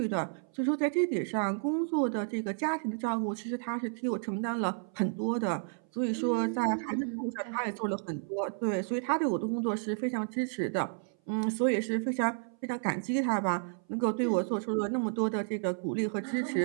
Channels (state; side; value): silent; left; 57 dB below the other